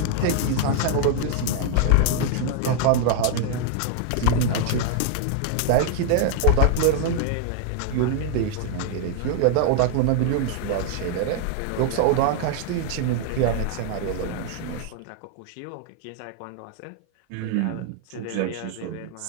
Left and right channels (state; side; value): different; both; correlation 0.00